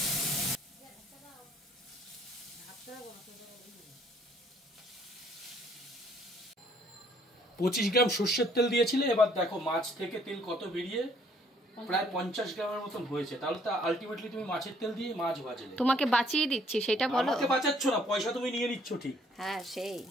25 গ্রাম সর্ষের তেল দিয়েছিলে, এবার দেখো মাছ থেকে তেল কত বেরিয়ে প্রায় 50 গ্রামের মতন হয়েছে। তাহলে তো আলটিমেটলি তুমি মাছের তেল দিয়ে মাছ ভাজলে। তোমাকে বাঁচিয়ে দিচ্ছি সেটা বলো। আমাকে বাঁচাচ্ছ না, পয়সা তুমি নিয়ে নিচ্ছ ঠিক। হ্যাঁ সেই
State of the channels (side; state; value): both; normal; correlation 0.63